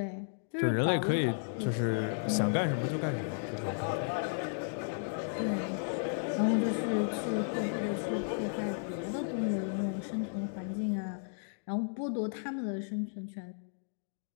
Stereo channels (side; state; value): right; silent; digital silence